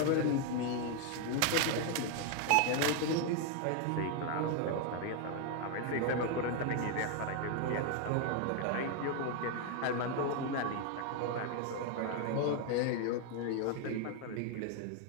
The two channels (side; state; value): both; different; correlation 0.01